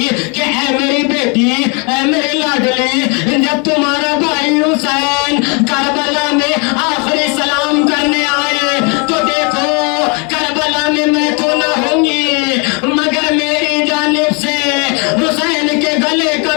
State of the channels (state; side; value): quieter; right; 33.5 dB